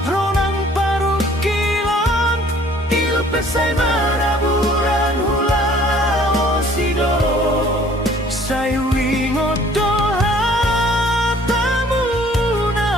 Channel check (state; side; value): normal; both; correlation 0.55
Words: ronang paru kilon ilupe sai maraburan hula osido sai wingot